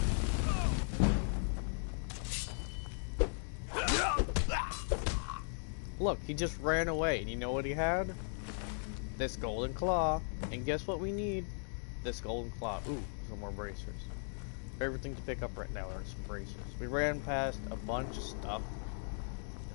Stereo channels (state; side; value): silent; right; 53 dB below the other